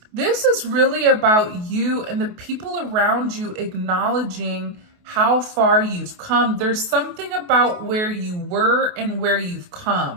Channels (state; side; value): late; left; 28 ms